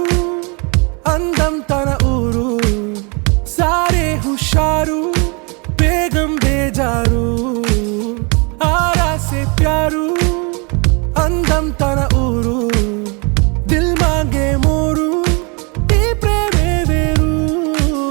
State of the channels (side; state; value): left; quieter; 32.1 dB